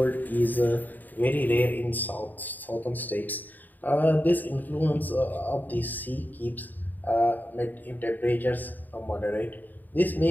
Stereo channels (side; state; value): right; late; 0.087 ms